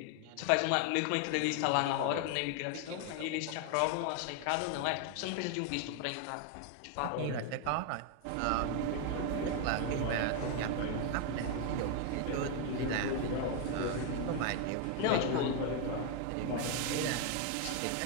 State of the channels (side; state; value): both; different; correlation 0.01